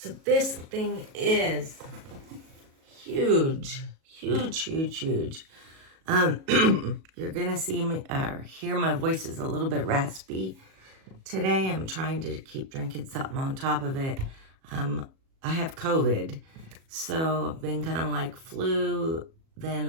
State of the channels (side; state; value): left; late; 37 ms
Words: this thing is huge. You're gonna see me or hear my voice is a little bit raspy today. I'm trying to keep drinking something on top of it. I have COVID, so I've been kind of like flu,